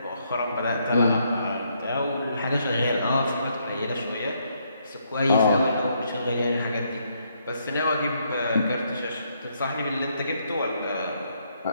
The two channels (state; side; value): inverted; both; correlation -0.74